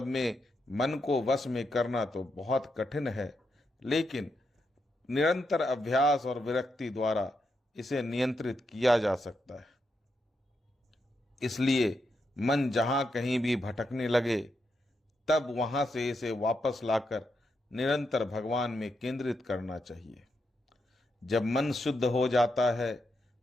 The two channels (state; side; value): normal; both; correlation 0.83